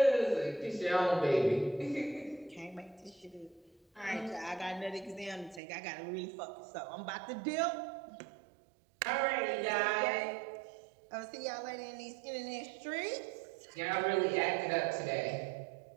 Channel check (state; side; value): drops out; left; at 5.6 s